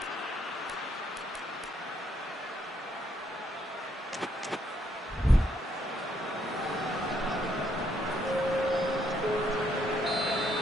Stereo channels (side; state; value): both; normal; correlation 0.73